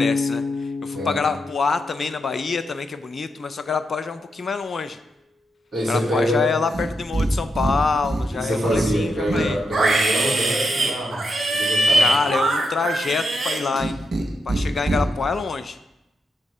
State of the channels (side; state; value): both; normal; correlation 0.84